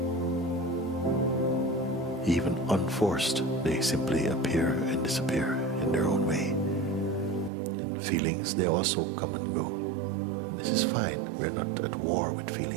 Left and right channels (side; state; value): left; drops out; at 7.5 s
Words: Even unforced, they simply appear and disappear in their own way. And feelings, they also come and go. And this is fine, we're not at war with